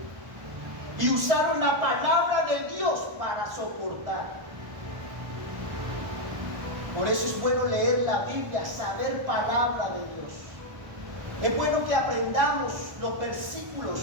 y usaron la palabra de Dios para soportar. Por eso es bueno leer la Biblia, saber palabra de Dios. Es bueno que aprendamos los versículos,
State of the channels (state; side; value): late; left; 1.1 ms